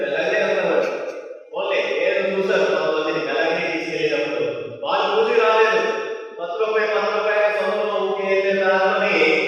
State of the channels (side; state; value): both; identical; correlation 1.00